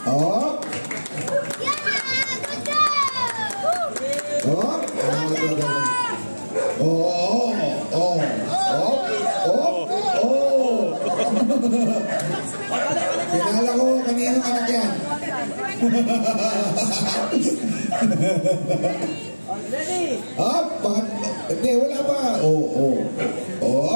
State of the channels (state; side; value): inverted; both; correlation -1.00